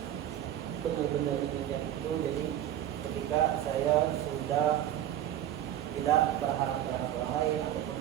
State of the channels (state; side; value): quieter; left; 11.6 dB